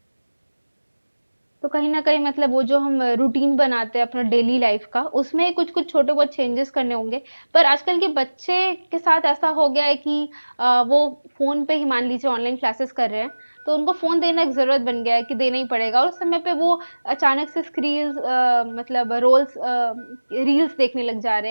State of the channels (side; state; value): both; inverted; correlation -1.00